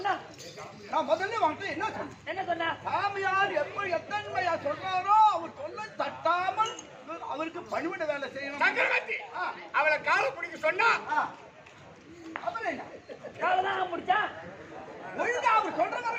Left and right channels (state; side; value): identical; both; correlation 1.00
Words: நான் முதல்ல வாங்கிட்டு என்ன சொன்ன சாமியார் எப்படி எத்தன்மையா சொல்றாரோ அவர் சொல்ல தட்டாமல் அவருக்கு பணிவிட வேலை செய்யணும். சங்கரவர்த்தி அவளை காலை பிடிக்க சொன்னா அப்புறம் என்ன காலதான் முடிச்சா ஒழுங்கா அவர் சொல்ற